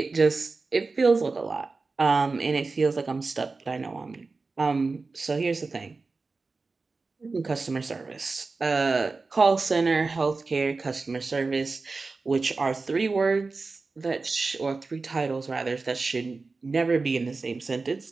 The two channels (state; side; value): quieter; left; 4.0 dB